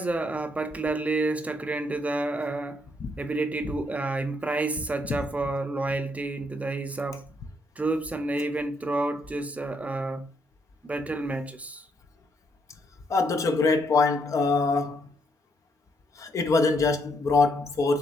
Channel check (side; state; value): both; normal; correlation 0.74